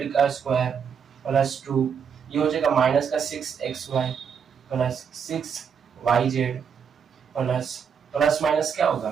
का स्क्वायर प्लस 2, ये हो जाएगा माइनस का 6xy plus 6yz plus plus minus क्या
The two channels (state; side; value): quieter; left; 7.0 dB